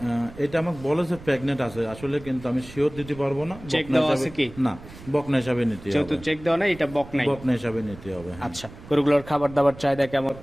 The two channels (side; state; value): right; noise; rumble, 17 dB below the sound